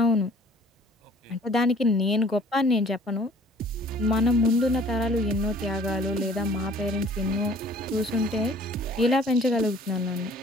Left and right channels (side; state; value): both; normal; correlation 0.54